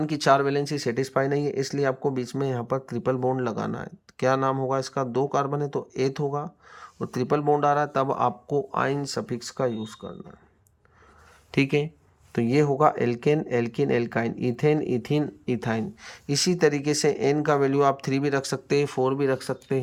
की 4 वैलेंसी सेटिस्फाई नहीं है, इसलिए आपको बीच में यहाँ पर ट्रिपल बॉन्ड लगाना है। क्या नाम होगा इसका? 2 कार्बन है तो एथ होगा और ट्रिपल बॉन्ड आ रहा है, तब आपको आइन सफिक्स का यूज़ करना है। ठीक है, तो ये होगा alkane, alkene, alkyne, ethane, ethene, ethyne. इसी तरीके से एन का वैल्यू आप 3 भी रख सकते हैं, 4 भी रख सकते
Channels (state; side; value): identical; both; correlation 1.00